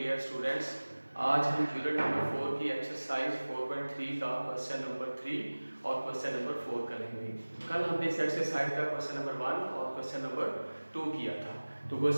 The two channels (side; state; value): both; inverted; correlation -1.00